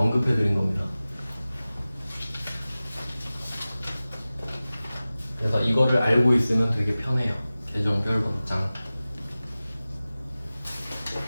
언급해 드린 겁니다. 그래서 이거를 알고 있으면 되게 편해요. 계정별 원장.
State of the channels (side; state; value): both; inverted; correlation -0.97